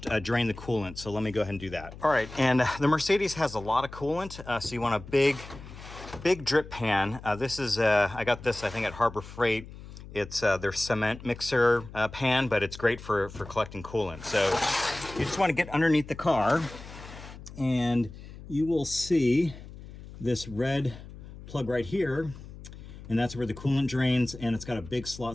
drain the coolant. So let me go ahead and do that. All right, and the Mercedes has a lot of coolant. So you want a big drip pan. This is, I got this, I think, at Harbor Freight. It's their cement mixer pan, but it's great for collecting coolant. So you just want to get underneath the car, and you will see this red plug right here. and that's where the coolant drains, and it's got a big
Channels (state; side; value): noise; left; hum, 15 dB below the sound